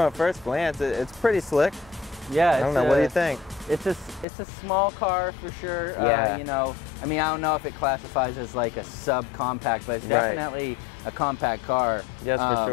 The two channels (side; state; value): right; drops out; at 4.2 s